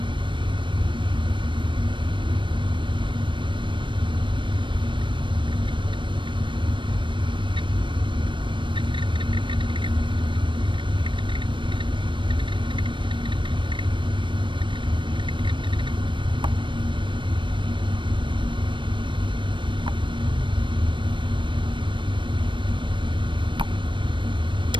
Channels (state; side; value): late; left; 0.24 ms